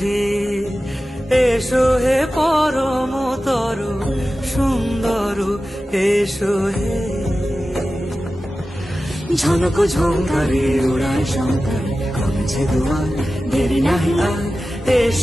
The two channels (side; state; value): both; normal; correlation 0.94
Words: হে, এসো হে পরমতর সুন্দর, এসো হে। ঝনক ঝঙ্কারে ওড়ায় শঙ্কর, কমেছে দুয়ার, দেরি নাহি আর,